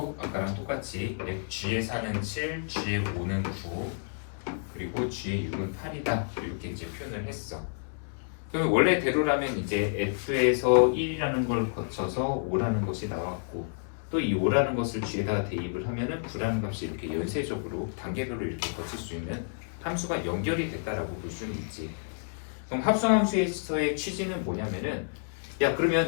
아까랑 똑같이 g의 4는 7, g의 5는 9, 그리고 g의 6은 8이다 이렇게 이제 표현을 했어. 그러면 원래대로라면 이제 f에서 1이라는 걸 거쳐서 5라는 것이 나왔고, 또 이 5라는 것을 g에다가 대입을 하면은 9라는 값이 이렇게 연쇄적으로 단계별로 이렇게 거칠 수 있는 함수가 연결이 됐다라고 볼 수는 있지. 그럼 합성함수에서의 취지는 뭐냐면은, 야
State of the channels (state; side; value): silent; right; digital silence